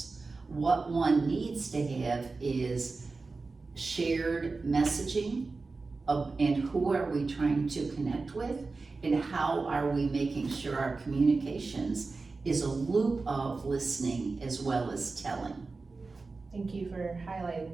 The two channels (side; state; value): left; quieter; 3.9 dB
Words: What one needs to have is shared messaging and who are we trying to connect with, and how are we making sure our communications is a loop of listening as well as telling. Thank you for highlighting